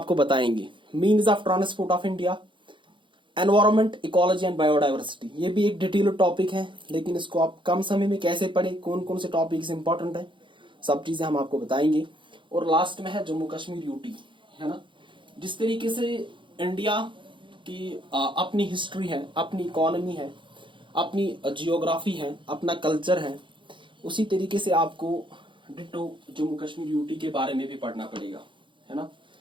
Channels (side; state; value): left; late; 0.24 ms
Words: बताएंगे। Means of transport of India, environment, ecology and biodiversity, ये भी एक डिटेल टॉपिक है, लेकिन इसको आप कम समय में कैसे पढ़े, कौन कौन से टॉपिक्स इंपॉर्टेंट है, सब चीजें हम आपको बताएंगे। और लास्ट में है जम्मू कश्मीर यूटी, है ना। जिस तरीके से इंडिया की अपनी हिस्ट्री है, अपनी इकोनॉमी है, अपनी जियोग्राफी है, अपना कल्चर है, उसी तरीके से आपको डिटो जम्मू कश्मीर यूटी के बारे में भी पढ़ना पड़ेगा, है ना।